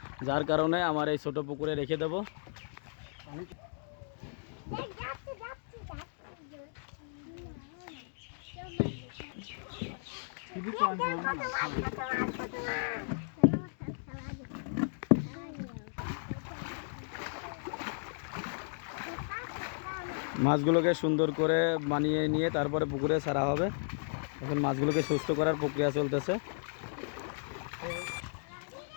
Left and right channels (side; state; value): right; silent; digital silence